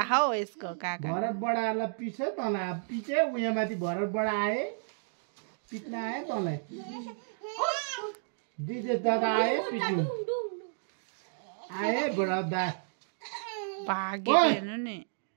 हौ यसको काका भरत बडालाई पिछे तँलाई पिछे उयो माथि भरत बडा आए पिट्न आयो तँलाई दिजे दादा आए पिट्नु आए भरत दा भागे ओइ। हेर्नु नि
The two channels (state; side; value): silent; left; digital silence